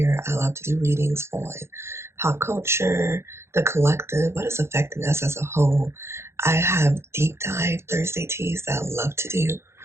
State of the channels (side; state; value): left; late; 0.13 ms